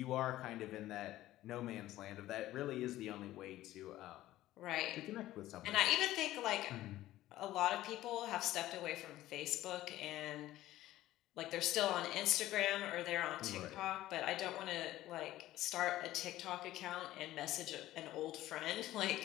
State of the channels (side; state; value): right; quieter; 15.1 dB